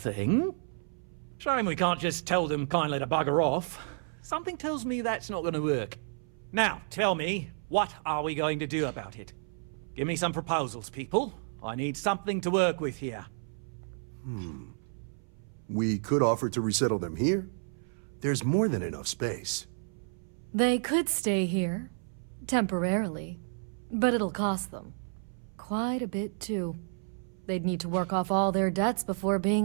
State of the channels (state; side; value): silent; left; 57 dB below the other